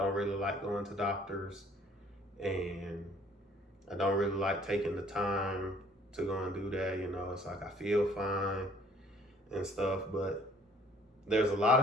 really like going to doctors, and I don't really like taking the time to go and do that. It's like I feel fine and stuff, but there's a lot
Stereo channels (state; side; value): normal; both; correlation 0.57